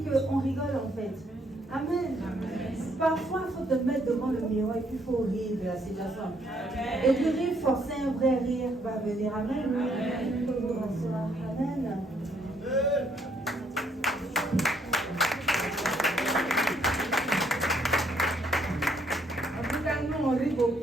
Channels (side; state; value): both; normal; correlation 0.70